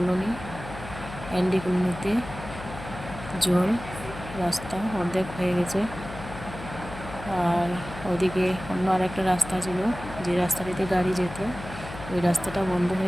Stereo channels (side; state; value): left; noise; hum, 12 dB below the sound